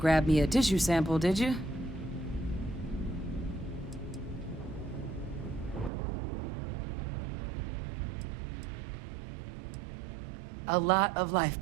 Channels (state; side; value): drops out; left; at 5.9 s